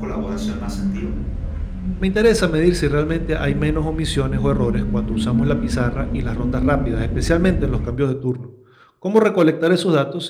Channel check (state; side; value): identical; both; correlation 1.00